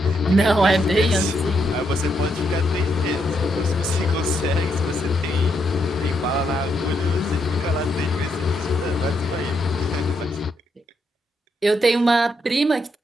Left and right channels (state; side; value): normal; both; correlation 0.78